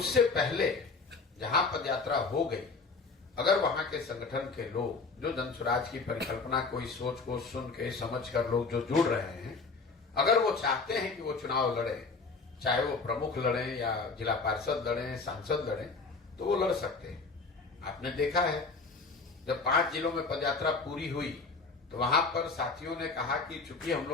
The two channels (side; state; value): right; quieter; 4.2 dB